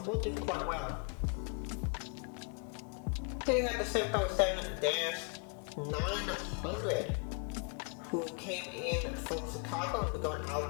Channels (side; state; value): right; quieter; 36.3 dB